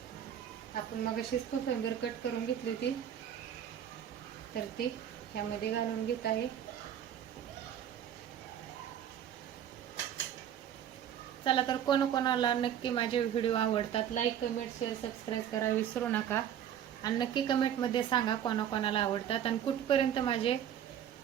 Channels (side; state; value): left; quieter; 9.9 dB